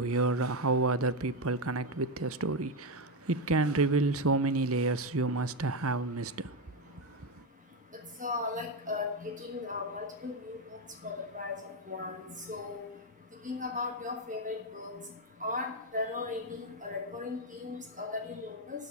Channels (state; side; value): normal; both; correlation 0.08